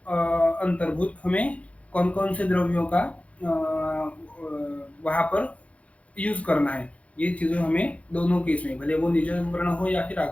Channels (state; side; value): late; right; 0.064 ms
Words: हमें कौन कौन से द्रव्यों का वहां पर यूज करना है। ये चीजें हमें दोनों केस में, भले वो निज वर्ण हो या फिर